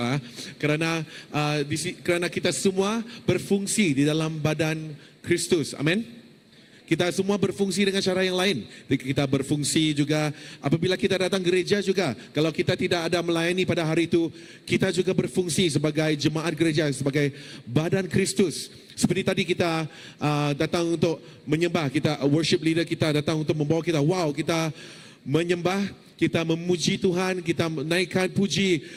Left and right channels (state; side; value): identical; both; correlation 1.00